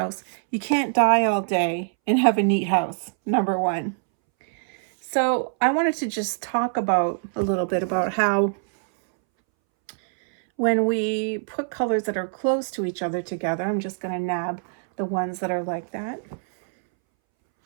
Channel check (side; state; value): left; silent; 63 dB below the other